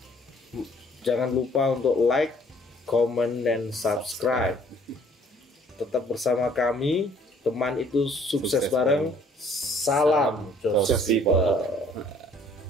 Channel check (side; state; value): both; normal; correlation 0.59